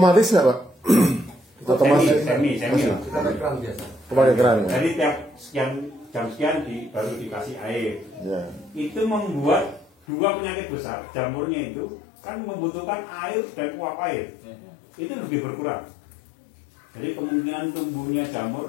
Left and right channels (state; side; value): drops out; right; at 9.9 s